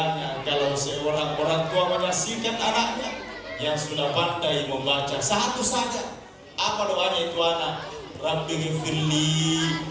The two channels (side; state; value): both; identical; correlation 1.00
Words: kalau seorang orang tua menyaksikan anaknya yang sudah pandai membaca satu saja. Apa doanya itu anak? Rabbi ghfirli